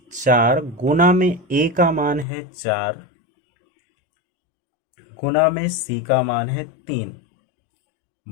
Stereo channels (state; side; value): drops out; right; at 2.2 s